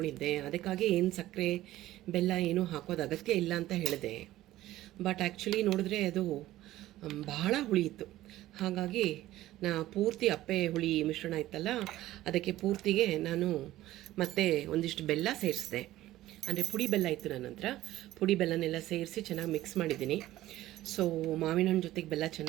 ಅದಕ್ಕಾಗಿ ಏನು ಸಕ್ಕರೆ ಬೆಲ್ಲ ಏನೂ ಹಾಕೋದು ಅಗತ್ಯ ಇಲ್ಲ ಅಂತ ಹೇಳಿದೆ. ಬಟ್ ಆ್ಯಕ್ಚುಲಿ ನೋಡಿದ್ರೆ ಅದು ಬಹಳ ಹುಳಿ ಇತ್ತು. ಹಾಗಾಗಿ ಪೂರ್ತಿ ಅಪ್ಪೆ ಹುಳಿ ಮಿಶ್ರಣ ಇತ್ತಲ್ಲ, ಅದಕ್ಕೆ ಪೂರ್ತಿಗೆ ನಾನು ಮತ್ತೆ ಒಂದಿಷ್ಟು ಬೆಲ್ಲ ಸೇರಿಸಿದೆ. ಅಂದರೆ ಪುಡಿ ಬೆಲ್ಲ ಇತ್ತು ನನ್ನ ಹತ್ರ. ಪುಡಿ ಬೆಲ್ಲನೆಲ್ಲ ಸೇರಿಸಿ ಚೆನ್ನಾಗಿ ಮಿಕ್ಸ್ ಮಾಡಿದ್ದೀನಿ. ಸೊ ಮಾವಿನ ಹಣ್ಣು ಜೊತೆಗೆ ಬೆಲ್ಲ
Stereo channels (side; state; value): left; quieter; 15.2 dB